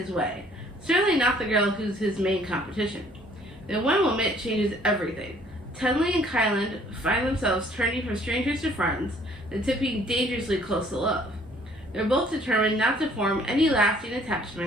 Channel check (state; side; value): normal; both; correlation 0.59